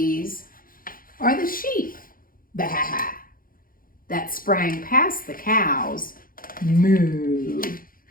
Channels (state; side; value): late; right; 0.41 ms